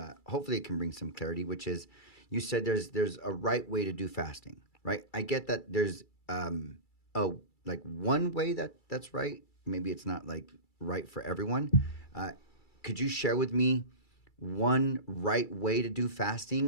some clarity, which is, you said there's a right way to do fasting, right? I get that there's like one way that's right. Maybe it's not like right for everyone. Could you share with me one right way to do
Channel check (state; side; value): late; right; 2.3 ms